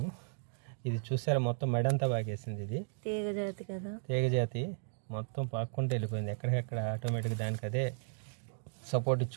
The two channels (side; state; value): left; silent; digital silence